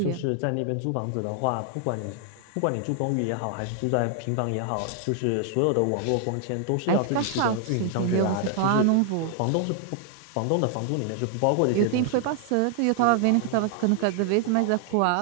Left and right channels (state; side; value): different; both; correlation 0.00